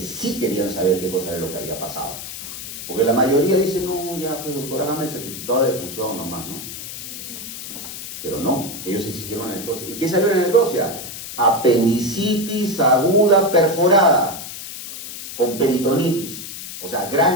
sí querían saber qué cosa era lo que había pasado. Porque la mayoría dice, no, ya, pues doctor, hágame el certificado de defunción nomás, ¿no? Pero no, ellos exigieron la necropsia. ¿Y qué salió en la necropsia? Apendicitis aguda perforada, con peritonitis. O sea,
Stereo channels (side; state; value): left; noise; hiss, 10 dB below the sound